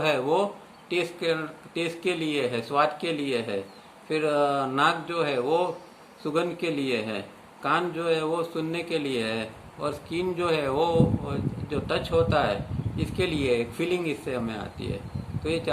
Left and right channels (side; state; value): both; identical; correlation 1.00